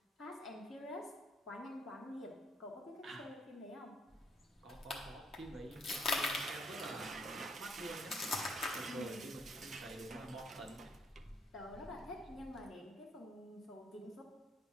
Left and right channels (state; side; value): normal; both; correlation 0.69